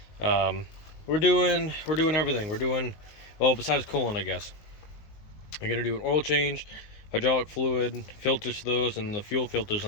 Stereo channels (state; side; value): late; right; 19 ms